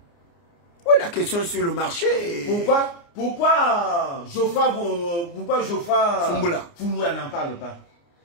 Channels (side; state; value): right; late; 29 ms